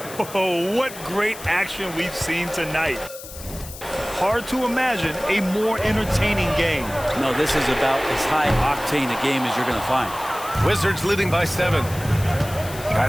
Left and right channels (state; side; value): noise; left; hiss, 14 dB below the sound